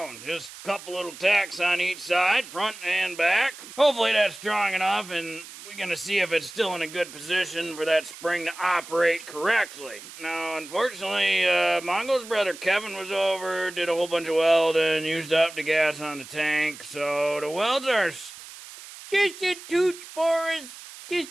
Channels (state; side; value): noise; right; hiss, 15 dB below the sound